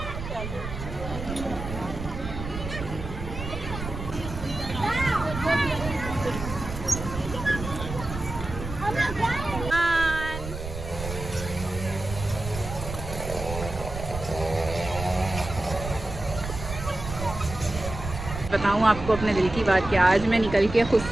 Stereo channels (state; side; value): noise; right; rumble, 8 dB below the sound